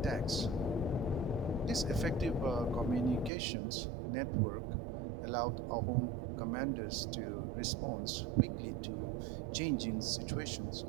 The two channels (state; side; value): drops out; left; at 3.3 s